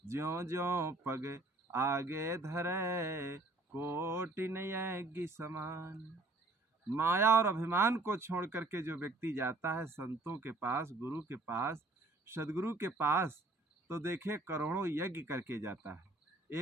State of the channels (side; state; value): left; quieter; 3.0 dB